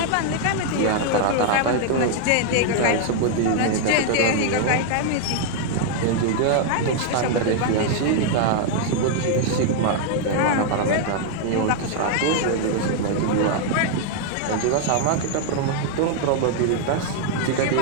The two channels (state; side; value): different; both; correlation 0.00